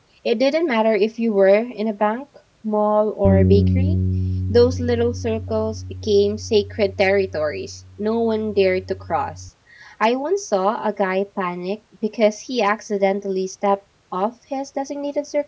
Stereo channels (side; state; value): both; identical; correlation 1.00